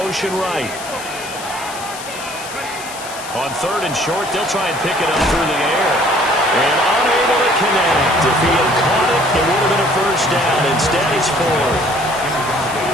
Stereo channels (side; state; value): left; noise; hiss, 12 dB below the sound